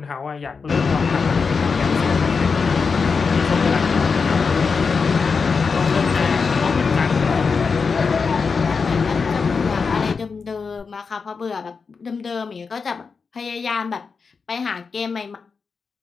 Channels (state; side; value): quieter; right; 5.1 dB